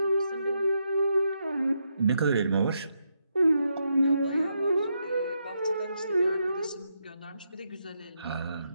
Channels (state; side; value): inverted; both; correlation -0.81